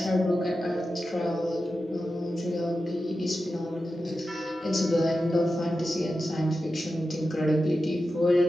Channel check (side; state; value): both; normal; correlation 0.91